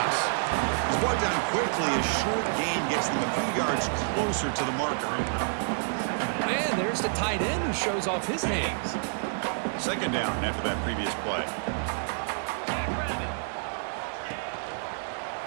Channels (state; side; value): silent; left; digital silence